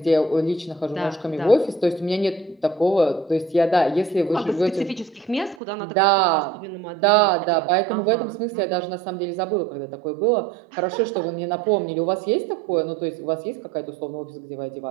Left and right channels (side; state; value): left; drops out; at 5.6 s